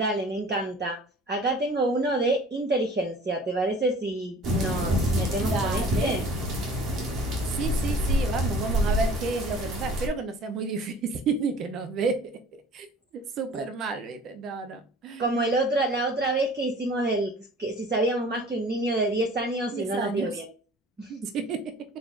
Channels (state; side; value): normal; both; correlation 0.47